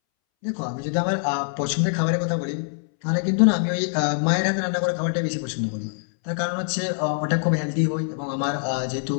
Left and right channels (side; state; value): right; silent; 63 dB below the other